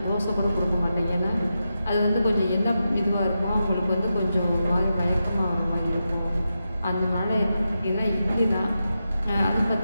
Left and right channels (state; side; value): inverted; both; correlation -0.89